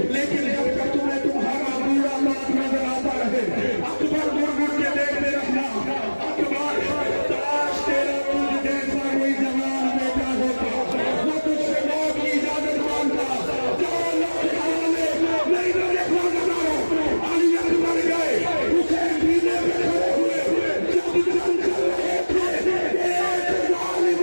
लेकिन जब तक तुम्हें तुम्हारा बूढ़ा बाप नजर आता रहे अकबर मुड़ मुड़ के देखते रखना। अकबर तलाश तेरा तुझ जैसा कोई जवान बेटा होता, वो तुझसे मौत की इजाजत मांगता। जाओ अल्लाह के हवाले। नहीं तो देखो अज़ादारों अली अकबर गए, हुसैन सीने पे खड़े हुए। जब जंग चल रहे थे एक जालिम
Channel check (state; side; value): inverted; both; correlation -1.00